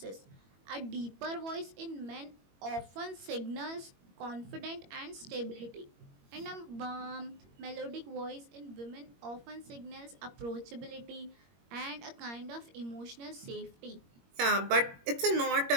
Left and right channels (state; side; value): late; left; 21 ms